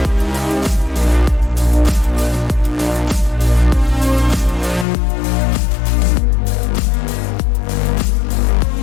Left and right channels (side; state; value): right; drops out; at 4.9 s